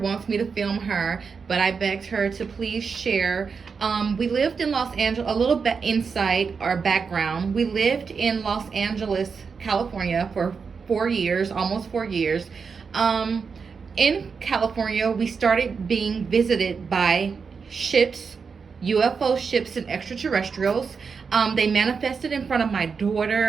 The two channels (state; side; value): quieter; left; 5.5 dB